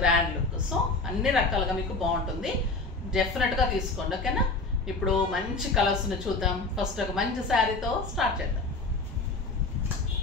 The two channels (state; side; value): quieter; right; 3.5 dB